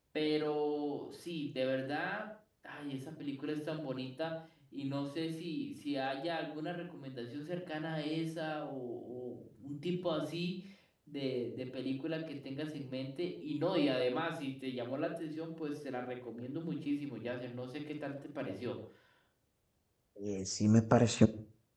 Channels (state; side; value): identical; both; correlation 1.00